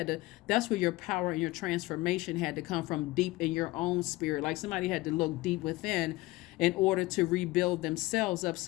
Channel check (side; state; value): right; quieter; 20.0 dB